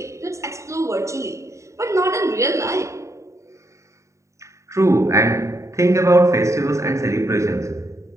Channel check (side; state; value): left; late; 0.14 ms